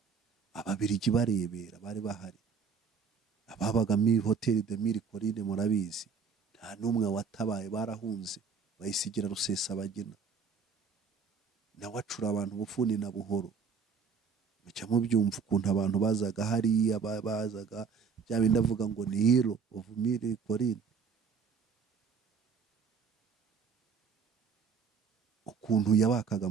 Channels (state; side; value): quieter; left; 5.9 dB